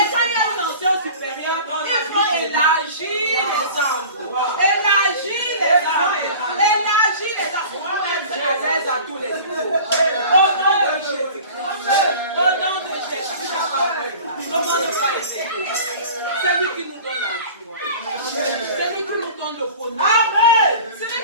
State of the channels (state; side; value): inverted; both; correlation -0.40